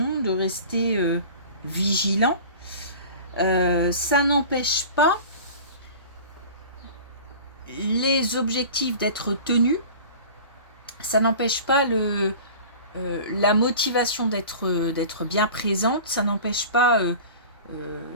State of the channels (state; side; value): inverted; both; correlation -0.39